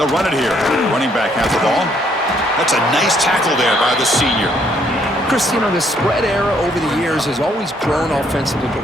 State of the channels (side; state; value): both; normal; correlation 0.68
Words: run it here. Running back has the ball. That's a nice tackle there by the senior. Chris, you know, the spread era over the years has always grown offensively,